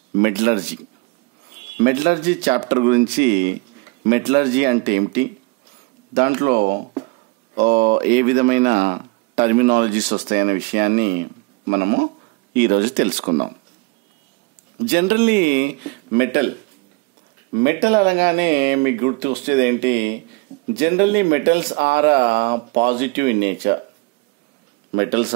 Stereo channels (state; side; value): quieter; left; 26.2 dB